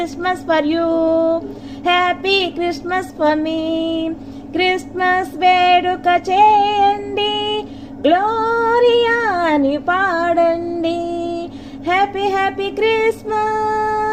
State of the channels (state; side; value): identical; both; correlation 1.00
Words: for you, happy Christmas for me. Christmas వేడుక చేయండి, Gloria అని పాడండి. Happy Christmas,